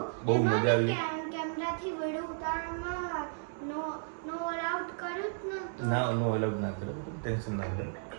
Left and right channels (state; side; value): silent; left; digital silence